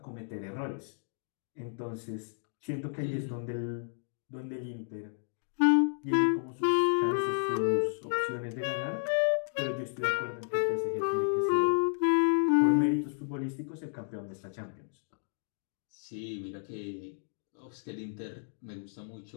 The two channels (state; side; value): silent; right; digital silence